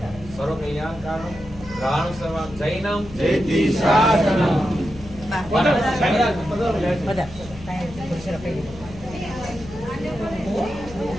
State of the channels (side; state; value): left; noise; hum, 16 dB below the sound